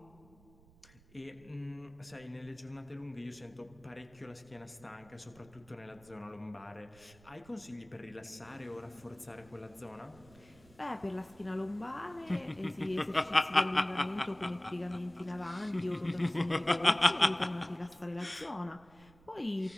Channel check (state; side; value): noise; right; rumble, 25 dB below the sound